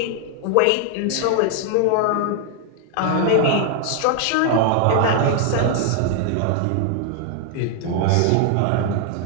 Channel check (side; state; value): both; different; correlation 0.00